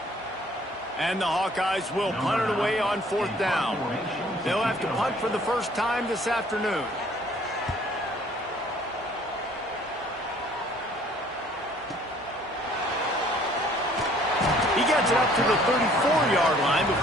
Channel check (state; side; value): normal; both; correlation 0.57